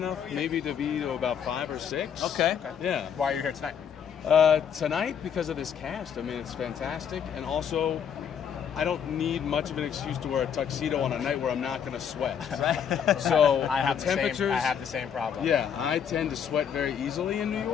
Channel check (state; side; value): quieter; right; 8.0 dB